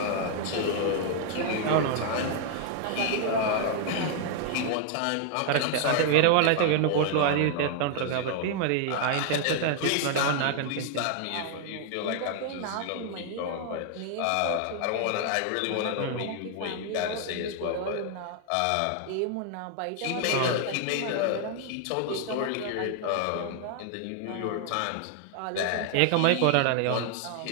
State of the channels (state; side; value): different; both; correlation 0.00